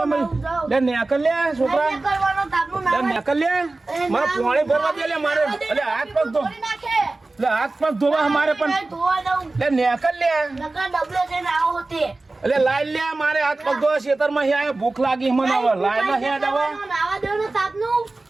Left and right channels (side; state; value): left; quieter; 3.2 dB